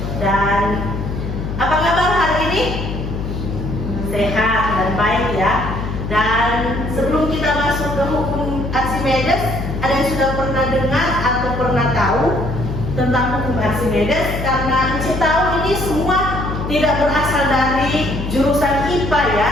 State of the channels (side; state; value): left; noise; hum, 5 dB below the sound